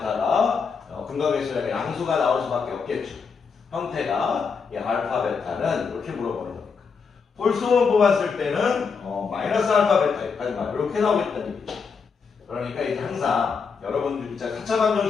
근각에서 양수가 나올 수밖에 없겠죠. 형태가 이 알파 베타는 이렇게 물어보는 거니까. 홀수만 뽑았을 때는 마이너스 알파 베타 이렇게 나오겠다는 얘기죠. 그러니까 이제 항상 여러분들 진짜 4차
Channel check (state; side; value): quieter; right; 5.5 dB